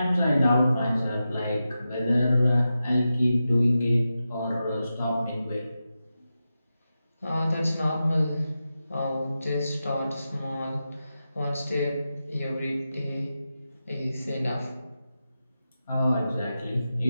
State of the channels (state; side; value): inverted; both; correlation -0.91